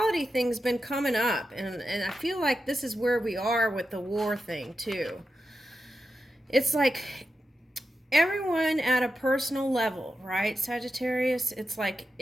thing's been coming up, and I feel like this is where we are with the war thing too. It's like everyone at a personal level, right, Sagittarius? It's like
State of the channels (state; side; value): normal; both; correlation 0.89